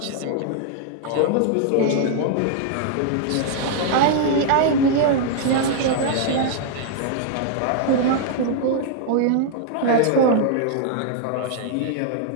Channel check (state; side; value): different; both; correlation 0.00